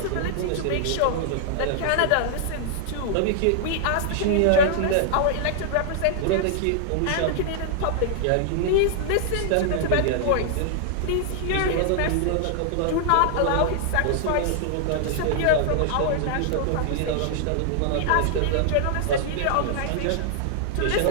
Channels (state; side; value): different; both; correlation -0.01